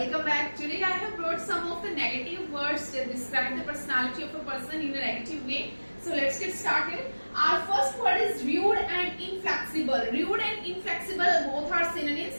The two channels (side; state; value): both; inverted; correlation -1.00